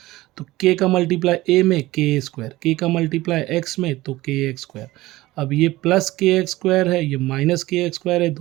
तो के का मल्टीप्लाई ए में के स्क्वायर, के का मल्टीप्लाई एक्स में तो के एक्स स्क्वायर। अब ये प्लस के एक्स स्क्वायर है, ये माइनस के एक्स स्क्वायर है,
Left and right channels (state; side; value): quieter; left; 18.1 dB